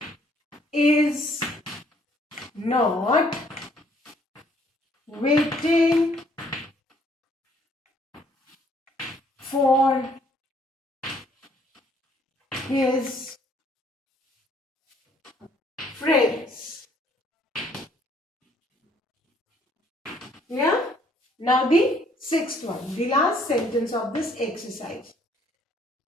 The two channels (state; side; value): normal; both; correlation 0.63